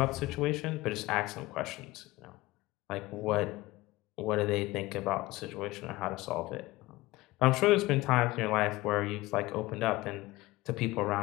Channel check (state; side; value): quieter; right; 19.6 dB